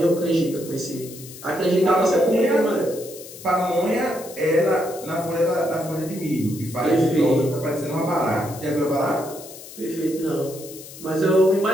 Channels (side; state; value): left; noise; hiss, 16 dB below the sound